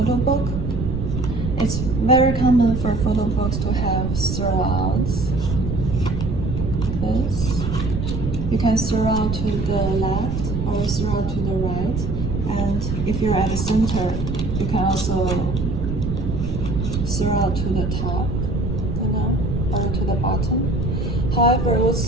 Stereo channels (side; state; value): right; noise; rumble, 3 dB below the sound